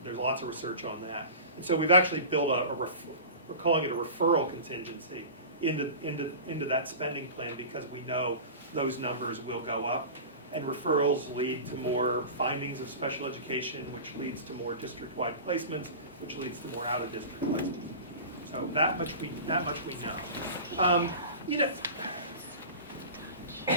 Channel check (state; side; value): inverted; both; correlation -0.34